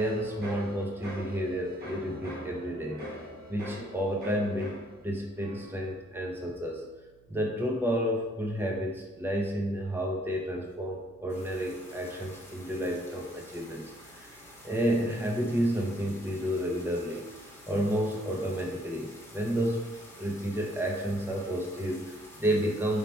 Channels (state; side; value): noise; right; hum, 30 dB below the sound